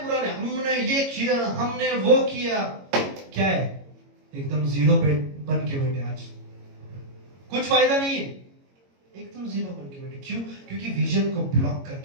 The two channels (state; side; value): late; left; 22 ms